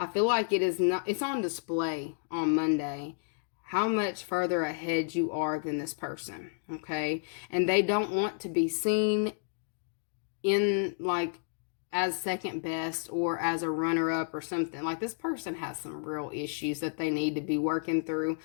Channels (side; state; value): right; silent; digital silence